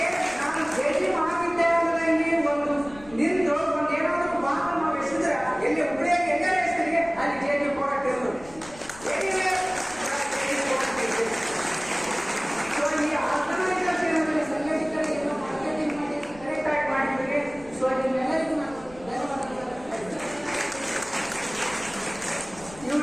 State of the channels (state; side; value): noise; left; rumble, 20 dB below the sound